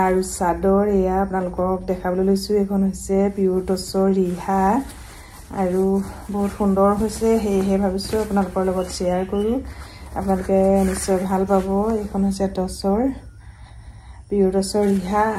আৰু চাদৰ। এয়া আপোনালোকক দেখাবলৈ লৈছোঁ। এইখন হৈছে পিয়ৰ টচৰ ৰিহা আৰু বহুত সুন্দৰ হৈছে, সেয়েহে ভাবিছোঁ আপোনালোকৰ লগত শ্বেয়াৰ কৰোঁ। আপোনালোকে নিশ্চয় ভাল পাব। এইখন হৈছে টচৰ পিয়ৰ টচৰ ৰিহা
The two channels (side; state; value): both; identical; correlation 1.00